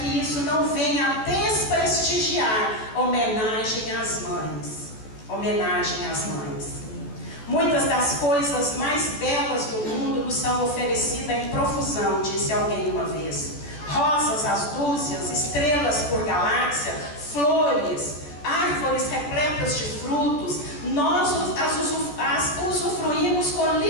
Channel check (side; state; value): right; late; 14 ms